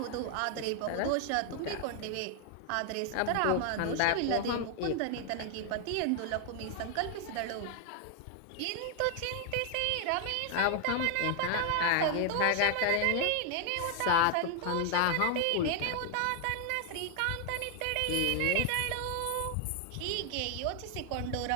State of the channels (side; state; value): both; different; correlation 0.00